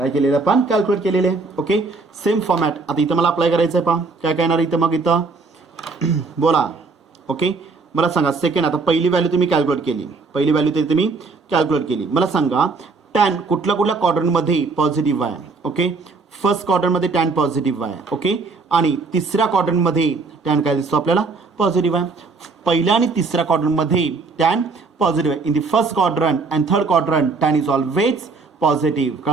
केलेलं आपण? कॅल्क्युलेट केलेले आहे. ओके, सेम फॉर्मॅट आता इथं मला अप्लाय करायचं आहे. पहा काय काय येणार इथं मग इथं बोला. ओके, मला सांगा सेकंड, आता पहिली व्हॅल्यू तुम्ही कॅल्क्युलेट केली, पहिली व्हॅल्यू तरी तुम्ही कॅल्क्युलेट केली. मला सांगा टॅन कुठल्या क्वाड्रंटमध्ये पॉझिटिव्ह आहे? ओके, फर्स्ट क्वाड्रंटमध्ये टॅन पॉझिटिव्ह आहे. ओके, आणि तिसऱ्या क्वाड्रंटमध्ये टॅन काय दिसतो आपल्याला? पॉझिटिव्ह आहे. पहिल्या आणि तिसऱ्या क्वाड्रंटमध्ये टॅन पॉझिटिव्ह आहे. In the first quadrant and third quadrant tan is always positive.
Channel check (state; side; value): quieter; left; 4.1 dB